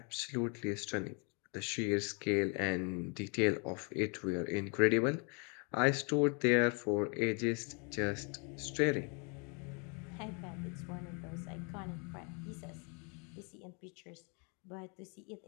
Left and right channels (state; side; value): quieter; right; 34.9 dB